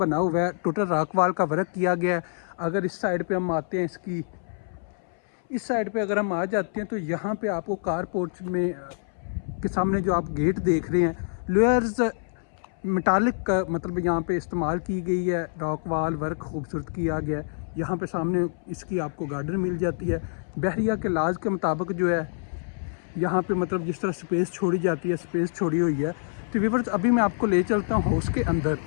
हुआ है, टोटल रॉक वाल का वर्क किया गया है। अगर इस साइड पे हम आते हैं, इसकी इस साइड पे अगर हम आ जाते हैं तो यहाँ पे आपको कार पोर्च में के सामने जो आप गेट देख रहे हैं, लेयर्स मेटालिक का मतलब यहाँ पे इस्तेमाल की गई है, रॉक वाल वर्क खूबसूरत किया गया है। यहाँ पे सामने इसकी आपको गार्डन मिल जाती है। बहरिया के लाज के मुताबिक जो है यहाँ पे मतलब जिस तरह स्पेस छोड़ी जाती है, स्पेस छोड़ी हुई है। तो व्यूअर्स, अभी मैं आपको ले चलता हूँ हाउस के अंदर।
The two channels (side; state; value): right; silent; 61 dB below the other